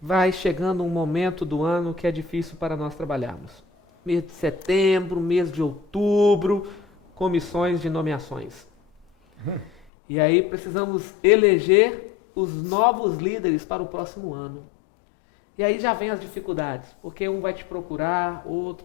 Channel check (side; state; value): right; drops out; at 9.9 s